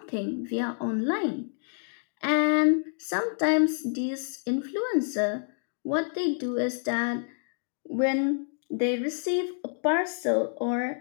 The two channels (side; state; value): right; silent; digital silence